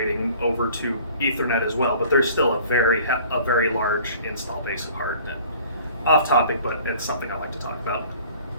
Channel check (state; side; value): inverted; both; correlation -0.50